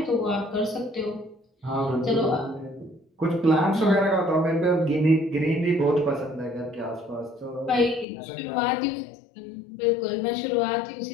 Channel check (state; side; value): drops out; right; at 8.1 s